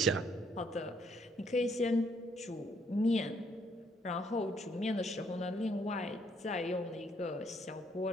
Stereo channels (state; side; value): normal; both; correlation 0.69